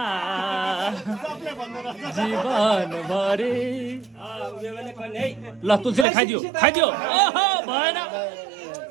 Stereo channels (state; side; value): drops out; left; at 6.1 s